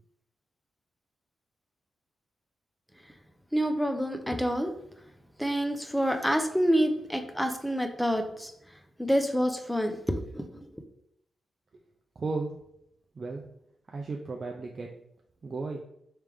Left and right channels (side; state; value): both; normal; correlation 0.95